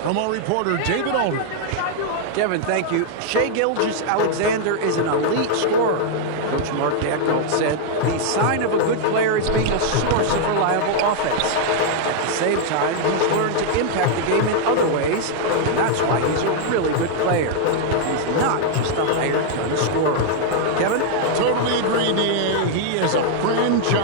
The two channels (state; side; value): different; both; correlation 0.00